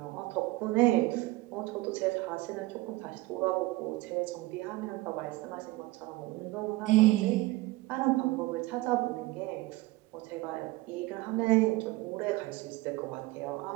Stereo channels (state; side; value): quieter; left; 19.7 dB